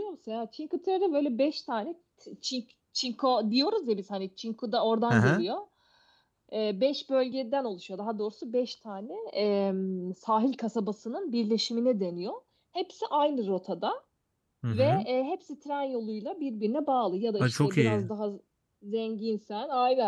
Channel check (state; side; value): identical; both; correlation 1.00